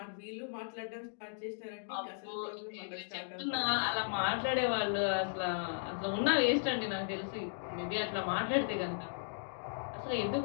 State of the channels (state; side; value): silent; right; digital silence